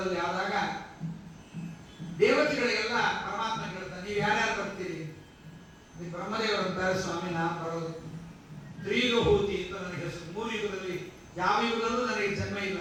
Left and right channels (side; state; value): both; identical; correlation 1.00